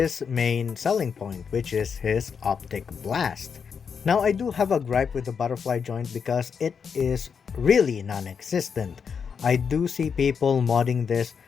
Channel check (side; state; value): right; quieter; 6.4 dB